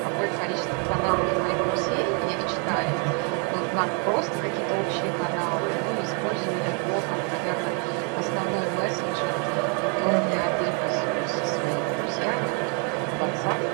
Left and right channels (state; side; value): quieter; left; 37.5 dB